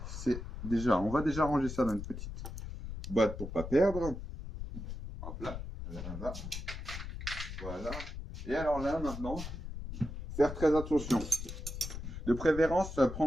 on va déjà ranger ça dans une petite boîte pour pas perdre. Hop là, là. Voilà. Et alors là, maintenant, faire très attention. De préférence,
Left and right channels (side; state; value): left; noise; rumble, 8 dB below the sound